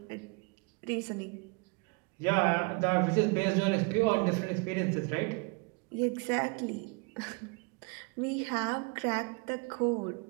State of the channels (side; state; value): left; quieter; 30.3 dB